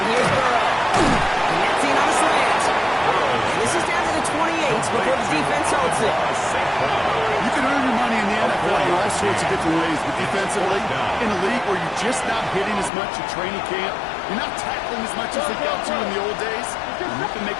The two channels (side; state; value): right; drops out; at 12.9 s